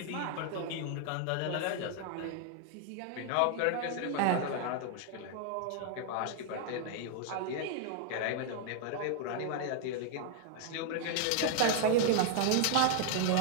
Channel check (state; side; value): different; both; correlation 0.00